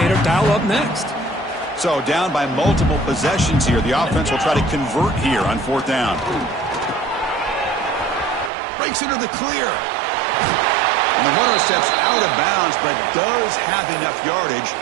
dial up next? So down by multiple possessions here. The offense will try to convert here on fourth down. Breaks into the clear. And the runner steps out of bounds, but does have enough yardage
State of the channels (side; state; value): left; drops out; at 8.5 s